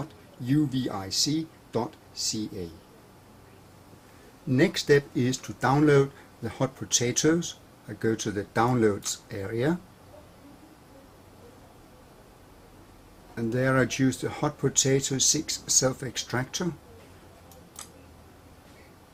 Next step is to download the Hot Potatoes. I go to the Downloads area, and there I choose the Hot Potato 6 self-extractor.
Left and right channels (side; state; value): both; identical; correlation 1.00